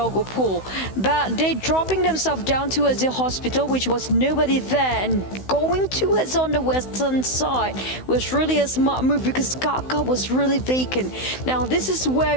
But they dropping themselves down towards the hospital, which was nobody there, and going towards on the western side was really a smart move because Kaka was really vacant. Now this is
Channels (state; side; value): late; right; 16 ms